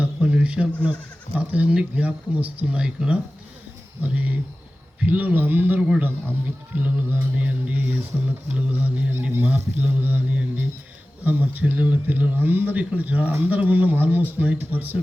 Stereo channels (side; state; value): both; normal; correlation 0.96